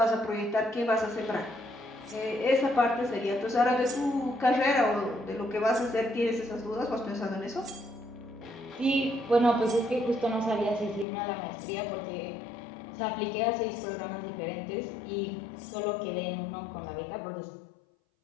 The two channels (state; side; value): drops out; right; at 11.1 s